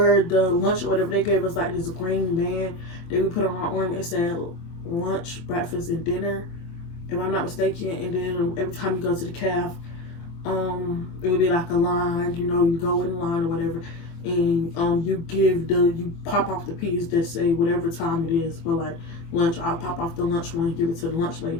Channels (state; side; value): late; right; 24 ms